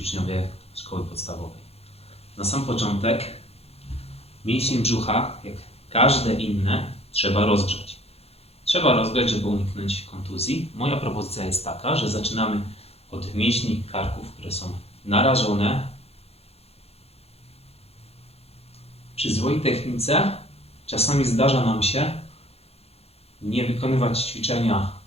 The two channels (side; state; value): right; late; 0.29 ms